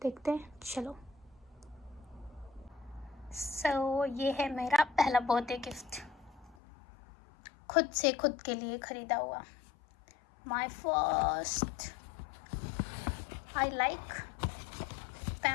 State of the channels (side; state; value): right; drops out; at 6.6 s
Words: देखते हैं. चलो. सो ये है मेरा पहला बर्थडे गिफ्ट, खुद से खुद के लिए खरीदा हुआ. My first. I like